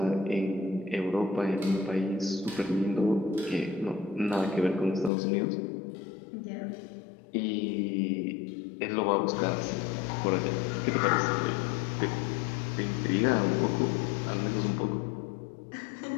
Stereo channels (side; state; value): right; drops out; at 5.1 s